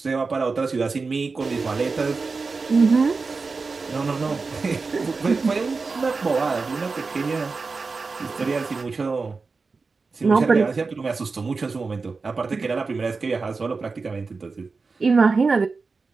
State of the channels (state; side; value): quieter; left; 4.3 dB